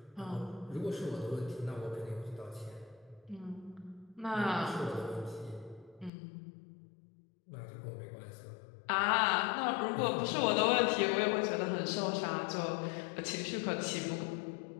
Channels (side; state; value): right; drops out; at 6.1 s